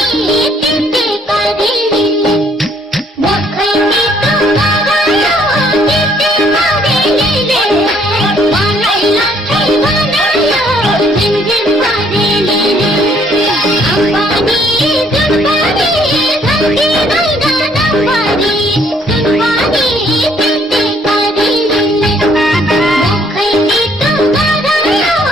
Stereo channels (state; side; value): normal; both; correlation 0.65